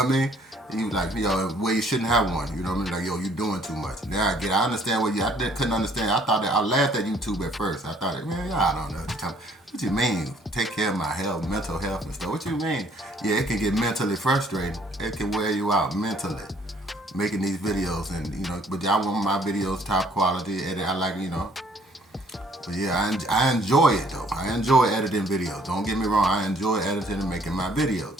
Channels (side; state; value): both; normal; correlation 0.61